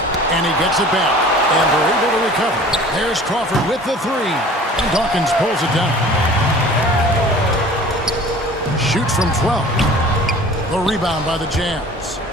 And he gets it back. And they're able to recover. There's Crawford with the 3. And Dawkins pulls it down. Shoots from 12. The rebound by the Jazz.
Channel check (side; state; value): both; normal; correlation 0.45